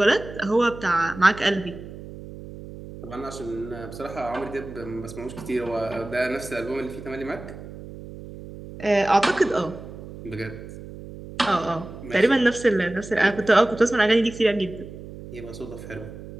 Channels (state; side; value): noise; right; hum, 13 dB below the sound